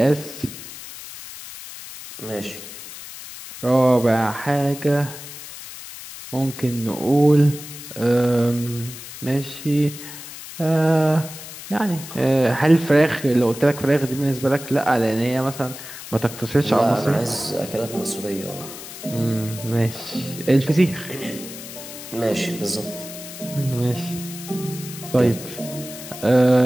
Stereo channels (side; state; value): left; noise; hiss, 13 dB below the sound